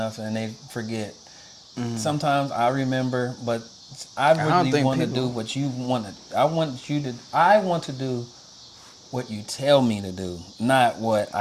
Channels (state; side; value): identical; both; correlation 1.00